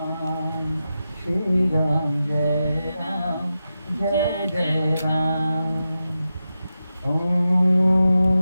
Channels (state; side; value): inverted; both; correlation -0.90